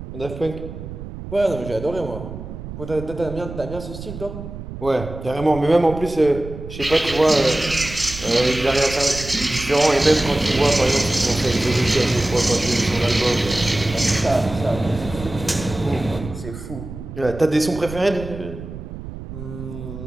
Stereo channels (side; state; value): right; noise; rumble, 11 dB below the sound